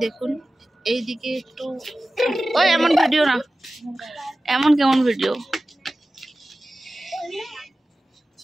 দেখুন এইদিকে একটু, ওই এমন ভিডিও না, এমন কেমন ভিডিও।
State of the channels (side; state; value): both; normal; correlation 0.96